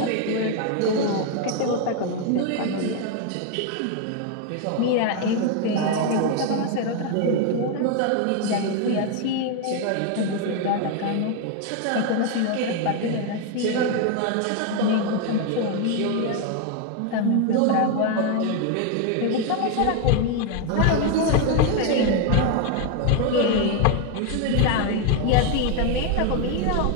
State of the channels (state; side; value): different; both; correlation 0.01